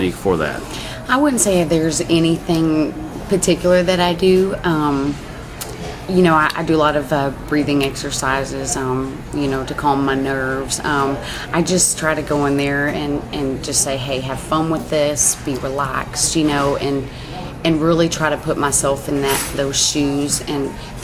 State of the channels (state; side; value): identical; both; correlation 1.00